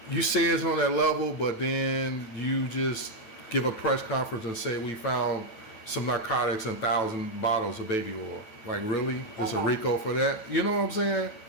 you say it's on that level, but then you just give a press conference and say we found some narcotics and 1,000 bottles of baby oil. Like, really? There's a RICO for that? You know what I'm saying?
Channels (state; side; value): late; right; 9.1 ms